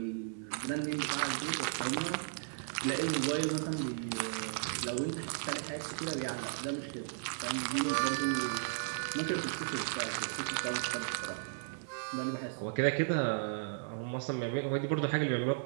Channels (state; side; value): silent; left; 54 dB below the other